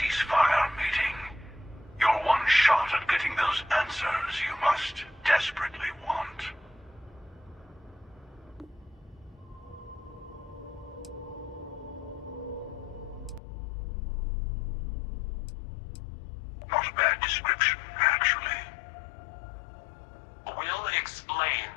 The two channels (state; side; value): drops out; right; at 13.4 s